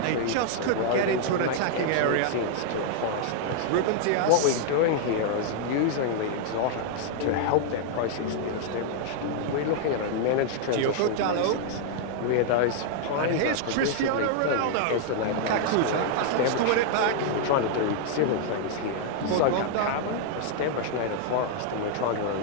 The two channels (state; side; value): different; both; correlation 0.00